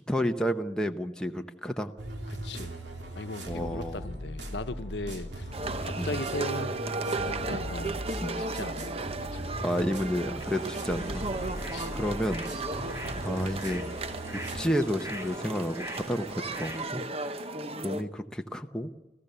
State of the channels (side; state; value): both; normal; correlation 0.64